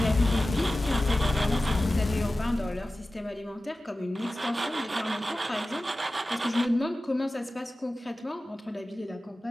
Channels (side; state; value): both; normal; correlation 0.96